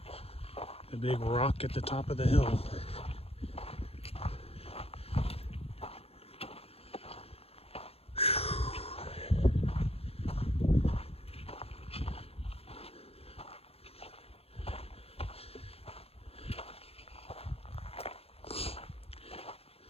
The big rock at the top of the hill.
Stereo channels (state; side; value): late; right; 0.29 ms